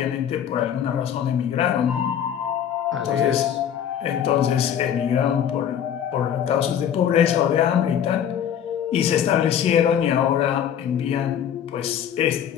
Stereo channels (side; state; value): right; quieter; 9.2 dB